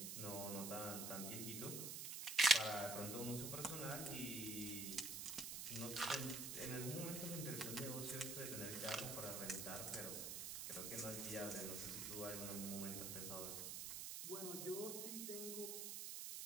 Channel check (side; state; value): right; noise; hiss, 4 dB below the sound